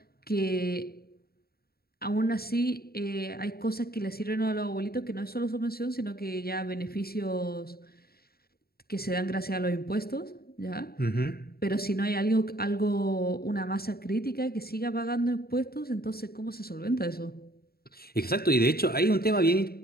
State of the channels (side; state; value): right; late; 0.45 ms